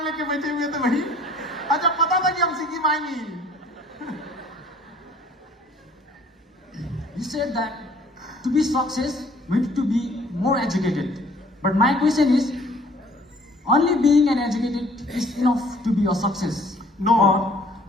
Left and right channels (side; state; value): both; normal; correlation 0.56